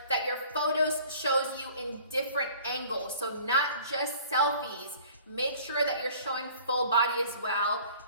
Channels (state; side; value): inverted; both; correlation -0.50